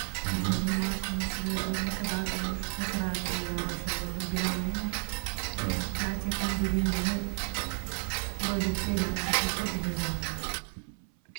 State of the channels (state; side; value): silent; left; 57 dB below the other